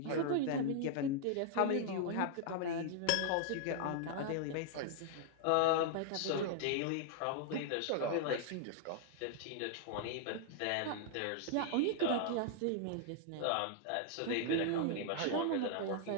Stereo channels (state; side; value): different; both; correlation -0.01